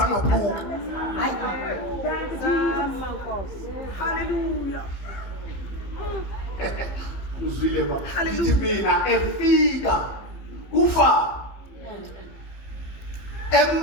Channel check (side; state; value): right; late; 15 ms